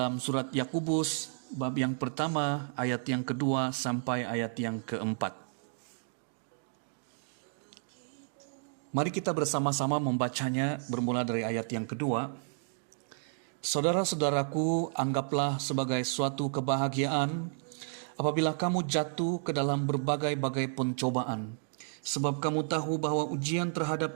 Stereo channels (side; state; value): left; silent; digital silence